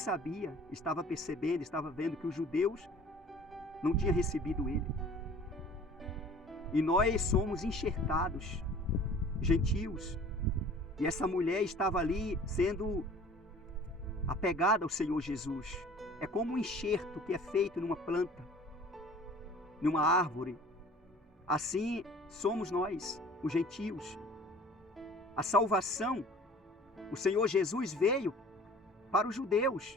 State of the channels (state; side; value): normal; both; correlation 0.47